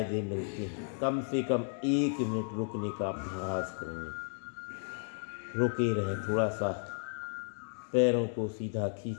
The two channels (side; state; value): right; silent; 55 dB below the other